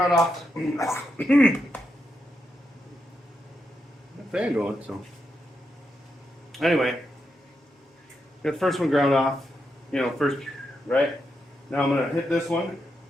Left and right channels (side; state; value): both; normal; correlation 0.84